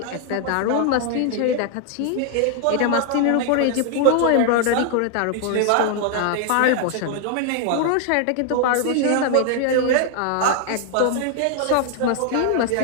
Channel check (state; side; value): different; both; correlation 0.00